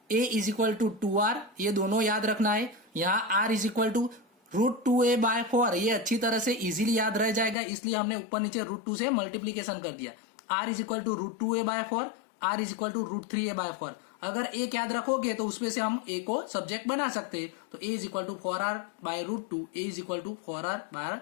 a is equal to 2r, ये दोनों याद रखना है। यहाँ r is equal to root 2a by 4, ये अच्छी तरह से इजीली याद रह जाएगा, इसलिए हमने ऊपर नीचे रूट 2 से मल्टीप्लीकेशन कर दिया। r is equal to root 2a by 4, r is equal to root 3a by 4। अगर एक याद रखोगे तो उसमें से हम a को सब्जेक्ट बना सकते हैं। तो a is equal to 4r by root 2, a is equal to 4r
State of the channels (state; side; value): drops out; right; at 7.6 s